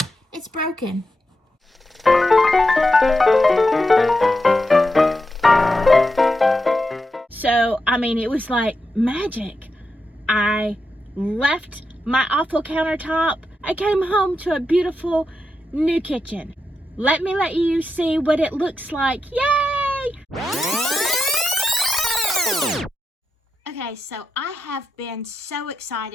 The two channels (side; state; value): both; normal; correlation 0.87